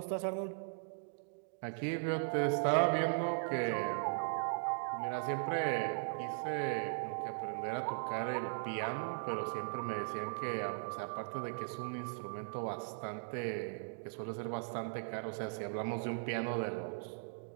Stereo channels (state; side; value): silent; left; digital silence